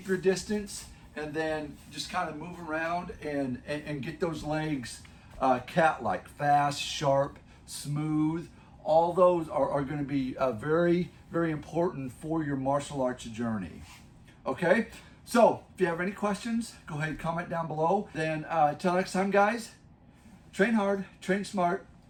your distance, and then just kind of move around and get those legs cat-like, fast, sharp, smooth. All those are going to be very, very important for your martial arts journey. Okay, so if you have any questions, go ahead and comment down below. Then until next time, guys, train hard, train smart.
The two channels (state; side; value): identical; both; correlation 1.00